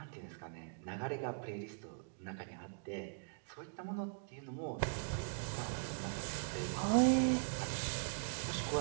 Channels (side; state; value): left; silent; digital silence